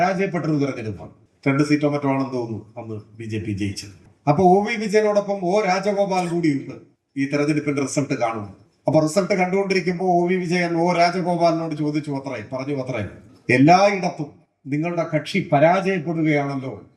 തെരഞ്ഞെടുപ്പാണ്. 2 സീറ്റോ മറ്റോ ആണെന്ന് തോന്നുന്നു അന്ന് BJP ജയിച്ചത്. അപ്പൊ OV വിജയനോടൊപ്പം O രാജഗോപാൽ കൂടിയുണ്ട് ഈ തെരഞ്ഞെടുപ്പിന്റെ റിസൾട്ട് കാണുന്നു. അപ്പൊ റിസൾട്ട് കണ്ടുകൊണ്ടിരിക്കുമ്പോൾ OV വിജയൻ O രാജഗോപാലിനോട് ചോദിച്ചു അത്രേ എല്ലായിടത്തും നിങ്ങളുടെ കക്ഷി പരാജയപ്പെടുകയാണല്ലോ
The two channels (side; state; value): both; identical; correlation 1.00